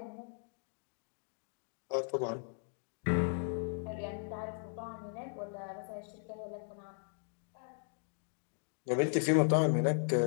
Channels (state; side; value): silent; right; digital silence